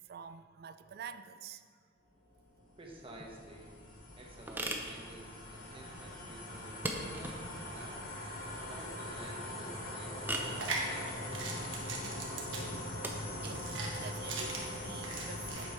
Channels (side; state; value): both; normal; correlation 0.18